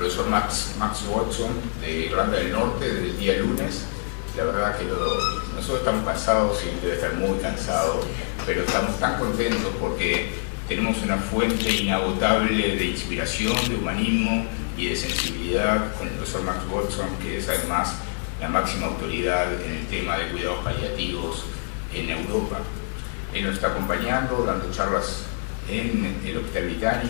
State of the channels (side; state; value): right; silent; digital silence